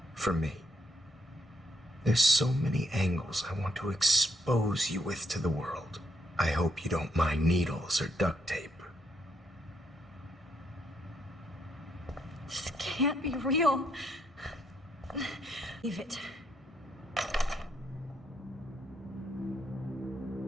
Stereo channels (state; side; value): normal; both; correlation 0.75